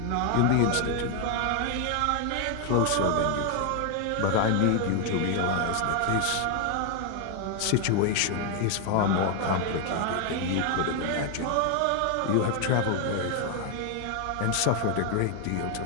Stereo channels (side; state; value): both; different; correlation 0.01